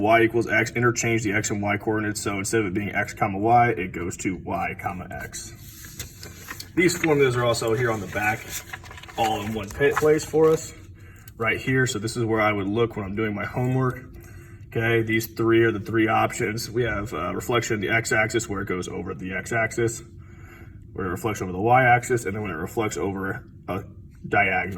equals x, interchange the x and y coordinates. So instead of it being x comma y, it goes to y comma x. These formulas are also here on the back, all in one place for us, right here. So this is where I would look when I'm doing my homework. Okay, these three are the three options. We have reflection in the x-axis where it goes over the x-axis, where it reflects over the y-axis, and then when it reflects over a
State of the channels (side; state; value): both; identical; correlation 1.00